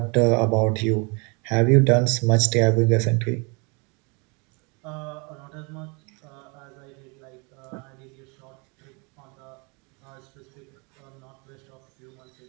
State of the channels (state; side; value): quieter; left; 31.5 dB